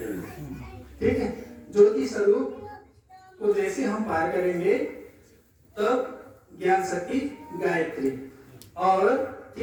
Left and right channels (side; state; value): both; identical; correlation 1.00